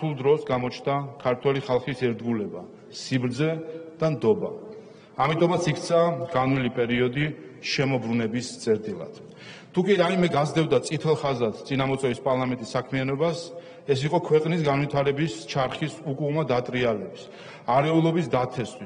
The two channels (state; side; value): identical; both; correlation 1.00